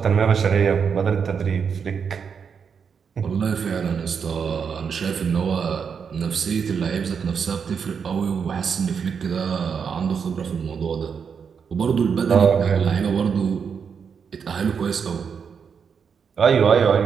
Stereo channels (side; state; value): left; quieter; 6.5 dB